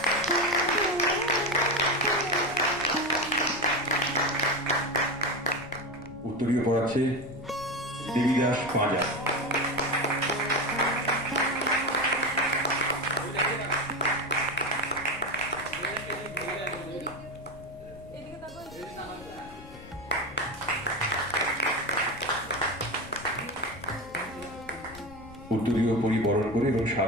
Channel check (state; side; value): noise; left; rumble, 18 dB below the sound